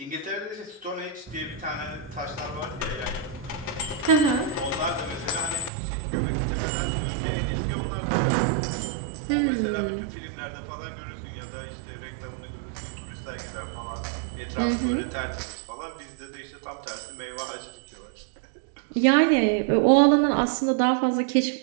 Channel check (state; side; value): drops out; left; at 5.7 s